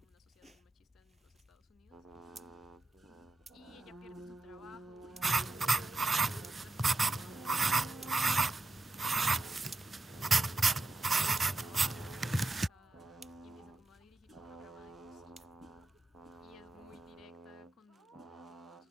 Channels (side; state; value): left; quieter; 3.1 dB